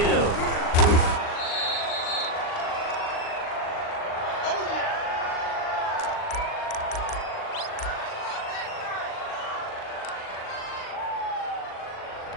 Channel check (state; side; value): late; right; 39 ms